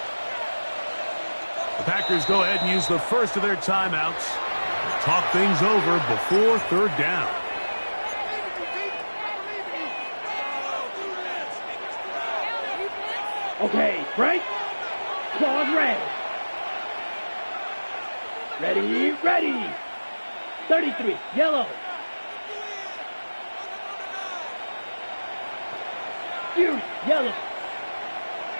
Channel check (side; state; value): both; inverted; correlation -1.00